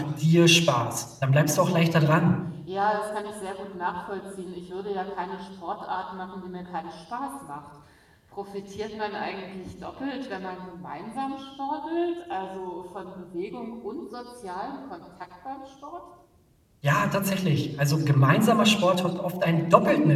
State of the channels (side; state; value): both; identical; correlation 1.00